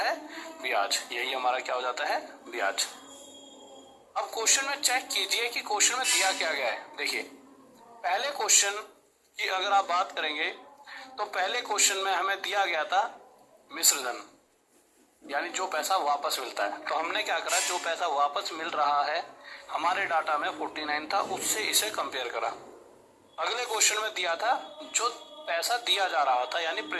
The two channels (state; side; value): identical; both; correlation 1.00